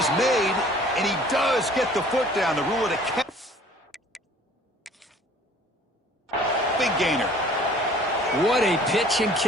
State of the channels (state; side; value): normal; both; correlation 0.52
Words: made, and he does get the foot down to rule it a catch. Big gainer. What a pitch and